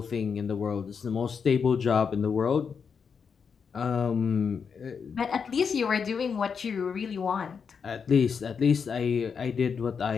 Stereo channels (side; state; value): right; quieter; 6.2 dB